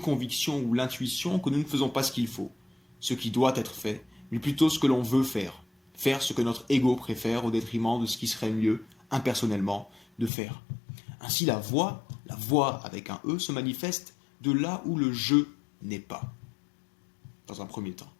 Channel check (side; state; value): right; drops out; at 10.3 s